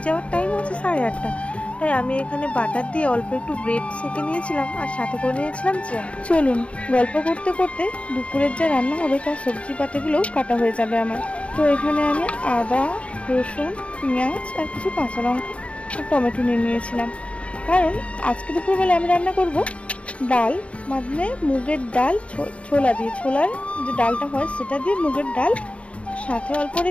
যাওয়ার টাইম হচ্ছে 8:30। তাই আমি এখানে বাটার দিয়ে অল্প একটু ব্রেড সেঁকে নিয়েছিলাম, আর সাথে করে নিয়েছিলাম জ্যাম। চলুন গল্প করতে করতে দুপুরের যা রান্না হবে তার সবজি পাতিগুলোও কাটা হয়ে যাবে আমার। তো এখানে আমি আদা, রসুন, পেঁয়াজ আর কিছু কাঁচা লঙ্কা আর টমেটো নিয়ে নিয়েছিলাম, কারণ আজকে দুপুরবেলা আমি রান্না করব ডাল, মানে মুগের ডাল ছোলা দিয়ে, ছোলার যে ডালটা হয় সেটা দিয়ে মুগের ডাল। সাথে অল্প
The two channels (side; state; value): right; late; 0.062 ms